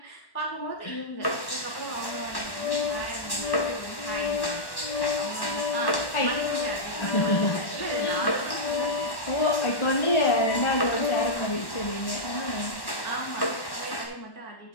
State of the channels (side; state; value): right; late; 1.1 ms